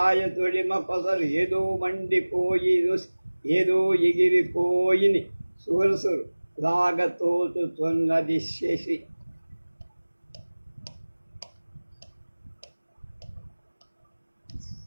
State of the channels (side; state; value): both; inverted; correlation -1.00